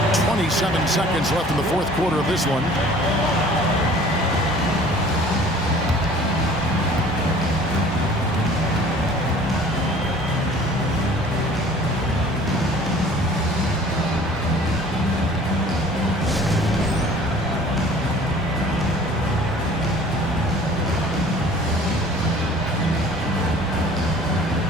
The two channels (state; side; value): normal; both; correlation 0.49